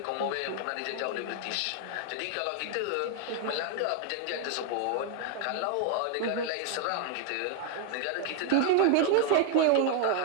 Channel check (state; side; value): different; both; correlation 0.00